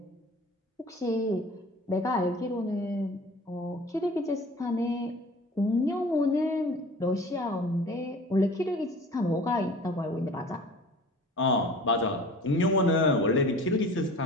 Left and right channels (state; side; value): normal; both; correlation 0.44